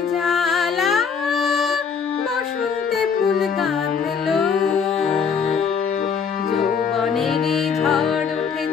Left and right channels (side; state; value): right; quieter; 6.3 dB